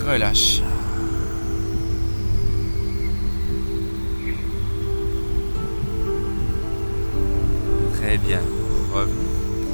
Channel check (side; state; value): both; inverted; correlation -1.00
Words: relâche. Très bien. Revenez.